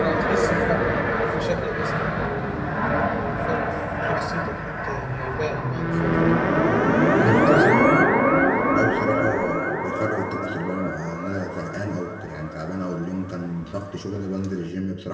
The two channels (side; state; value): both; identical; correlation 1.00